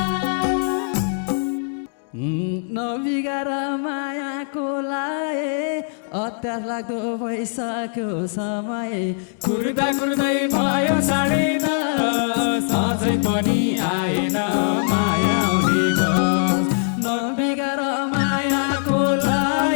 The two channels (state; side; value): silent; right; digital silence